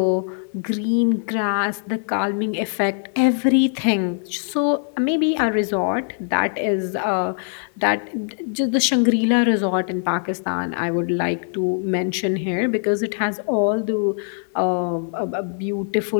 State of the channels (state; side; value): silent; right; 58 dB below the other